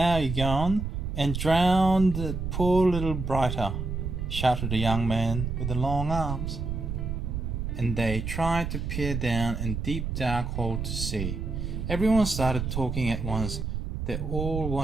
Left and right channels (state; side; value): noise; right; rumble, 4 dB below the sound